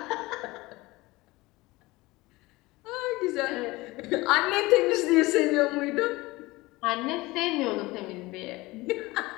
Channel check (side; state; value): right; quieter; 21.0 dB